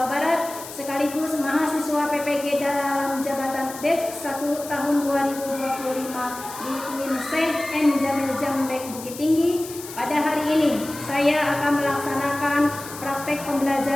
Barat, sekaligus mahasiswa PPG dalam jabatan BED 1 tahun 2025 di UIN Syekh N. Jamil Jambek Bukit Tinggi. Pada hari ini, saya akan melaksanakan praktek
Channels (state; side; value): noise; left; hiss, 13 dB below the sound